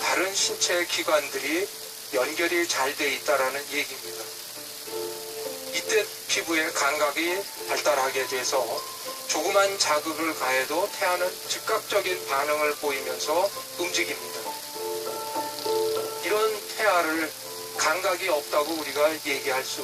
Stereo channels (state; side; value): identical; both; correlation 1.00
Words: 다른 신체 기관들이 연결이 잘 돼 있다는 얘기입니다. 이때 피부에 감각이 발달하게 돼서 조그만 자극을 가해도 태아는 즉각적인 반응을 보이면서 움직입니다. 이런 태아를 감각이 없다고 우리가 얘기할